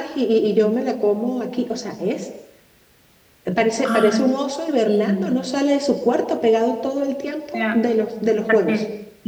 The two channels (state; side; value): identical; both; correlation 1.00